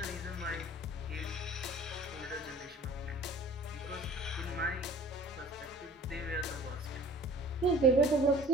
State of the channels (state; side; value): normal; both; correlation 0.46